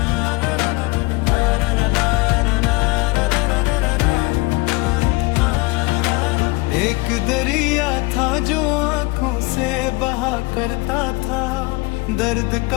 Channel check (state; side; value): quieter; right; 23.8 dB